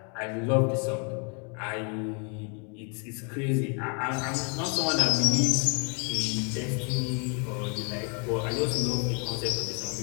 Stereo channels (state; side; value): quieter; right; 38.0 dB